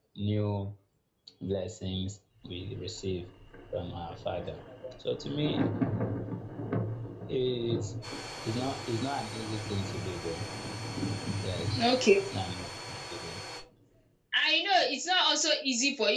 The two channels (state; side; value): identical; both; correlation 1.00